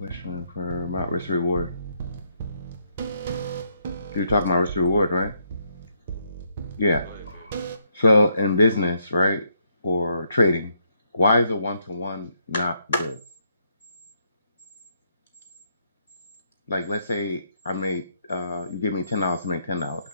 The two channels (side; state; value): both; inverted; correlation -0.75